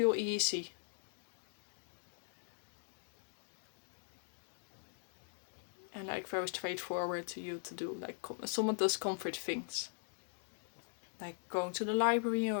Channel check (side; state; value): right; silent; digital silence